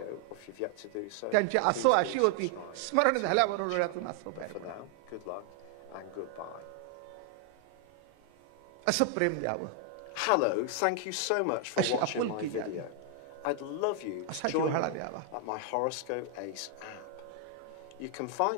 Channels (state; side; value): different; both; correlation 0.00